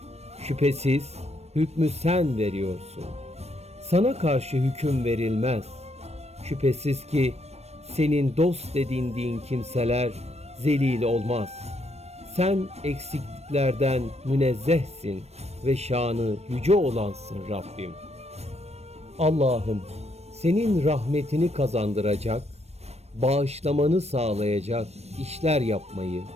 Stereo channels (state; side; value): late; left; 0.31 ms